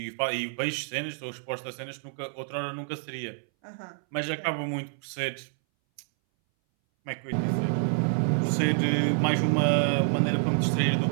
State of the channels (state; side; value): silent; left; 59 dB below the other